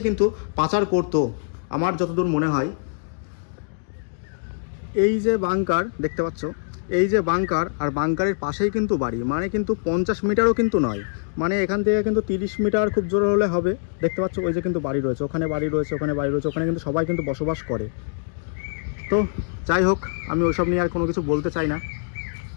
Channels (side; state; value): right; silent; digital silence